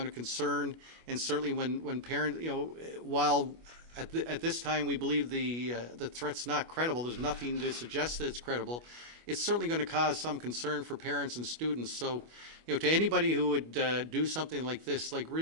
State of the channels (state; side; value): late; left; 25 ms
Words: of concern, and certainly when parents, while at this time we believe the threat's not credible, there's nothing to suggest that it's credible. It's certainly going to cause some concern for parents and students. So, to anybody who would do something like this,